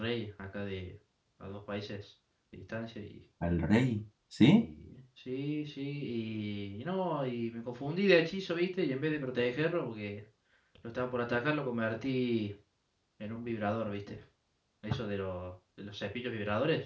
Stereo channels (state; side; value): identical; both; correlation 1.00